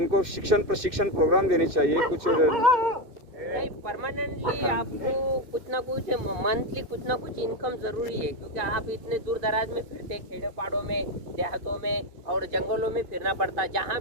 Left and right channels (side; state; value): left; late; 2.6 ms